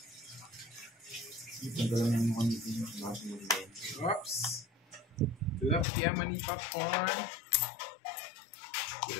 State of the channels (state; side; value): drops out; right; at 5.9 s